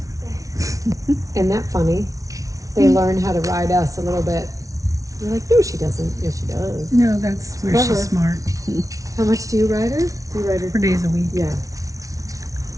Isn't that funny? They learn how to ride us a little bit. You're like, no, she doesn't. Yes, she does. No, that's where Clever. she's smart. How much do you ride her? Do you ride her? 4 days a week. Yeah.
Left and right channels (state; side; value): late; left; 0.17 ms